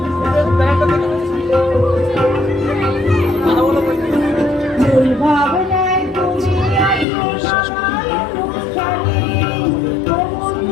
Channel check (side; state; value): right; drops out; at 7.1 s